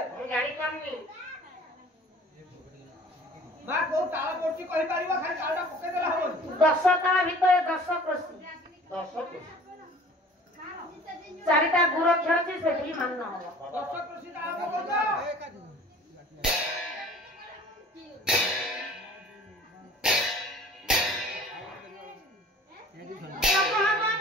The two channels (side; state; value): both; normal; correlation 0.47